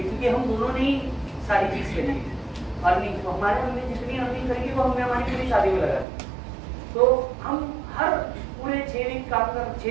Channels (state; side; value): drops out; left; at 6.1 s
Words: क्योंकि हम दोनों ने ही सारी चीज करी अर्निंग। तो हमारे हमने जितनी अर्निंग करी वो हमने हमारी पूरी शादी में लगाई। तो हम हर पूरे 6 दिन काम